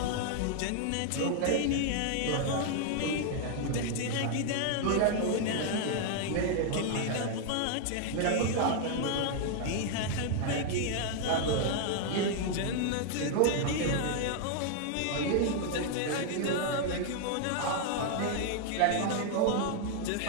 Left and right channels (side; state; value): both; different; correlation 0.00